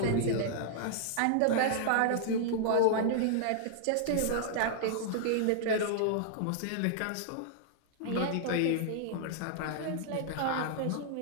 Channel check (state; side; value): different; both; correlation -0.01